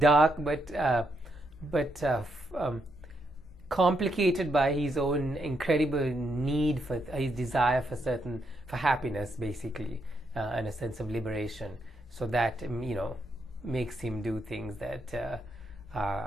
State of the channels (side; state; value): both; normal; correlation 0.79